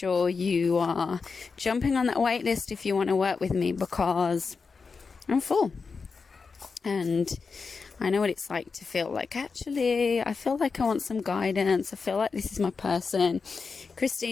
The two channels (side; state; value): right; quieter; 4.9 dB